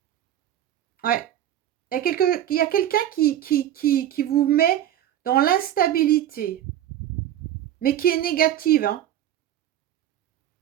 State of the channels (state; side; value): quieter; left; 11.6 dB